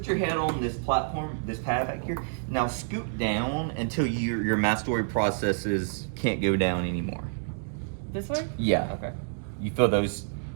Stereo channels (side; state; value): left; silent; digital silence